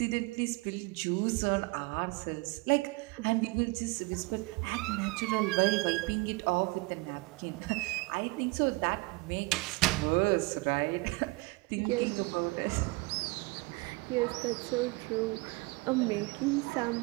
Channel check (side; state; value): left; quieter; 25.9 dB